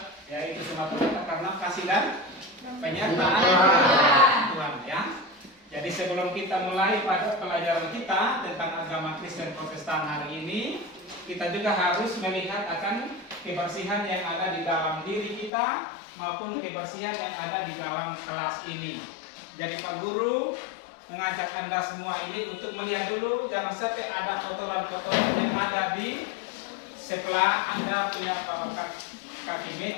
ya itu semata-mata karena kasih dan penyertaan Tuhan, ya. Jadi sebelum kita mulai pada pelajaran kita tentang agama Kristen Protestan hari ini, kita juga harus melihat akan kebersihan yang ada di dalam diri kita maupun kebersihan yang ada di dalam kelas ini. Jadi Pak Guru mengajak Anda semua ini untuk melihat dulu, jangan sampai ada kotoran-kotoran yang ada di sebelah Anda punya kaki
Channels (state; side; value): drops out; right; at 15.5 s